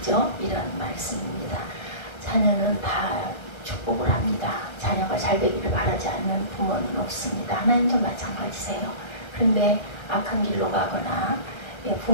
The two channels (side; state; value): right; late; 1.3 ms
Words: 이런 말씀입니다. 자녀는 다 축복을 합니다. 자녀가 잘 되기를 바라지 않는 부모는 없습니다. 하나님도 마찬가지세요. 그런데 악한 길로 가거나